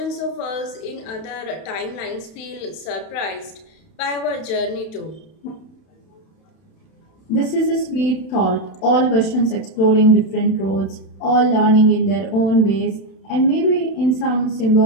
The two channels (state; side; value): late; right; 31 ms